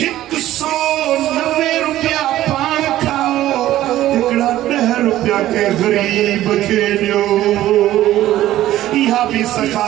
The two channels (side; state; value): left; quieter; 14.1 dB